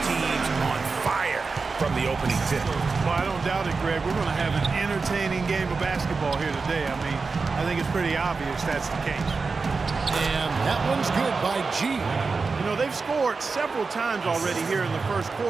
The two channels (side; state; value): left; quieter; 4.4 dB